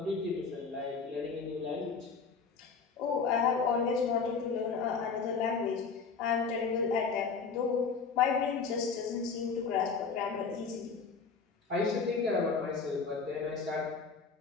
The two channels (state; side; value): quieter; right; 5.3 dB